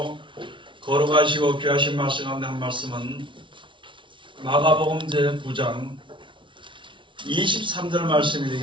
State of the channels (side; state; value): left; late; 0.24 ms